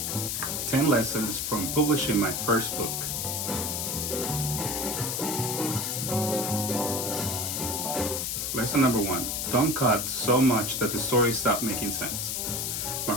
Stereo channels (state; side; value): noise; left; hiss, 1 dB below the sound